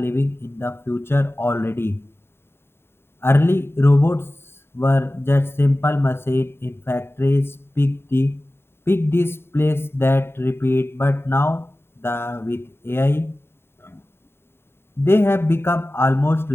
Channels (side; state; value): right; late; 0.11 ms